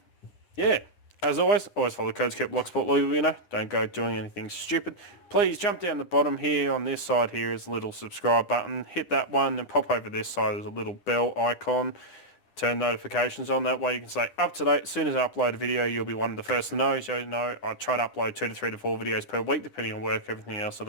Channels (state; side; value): late; right; 9.8 ms